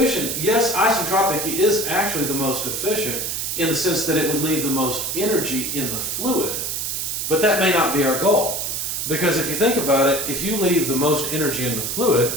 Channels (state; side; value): noise; right; hiss, 2 dB below the sound